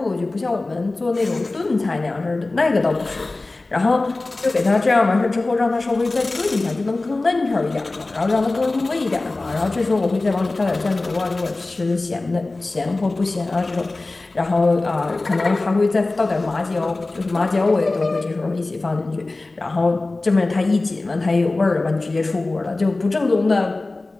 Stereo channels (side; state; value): right; quieter; 3.2 dB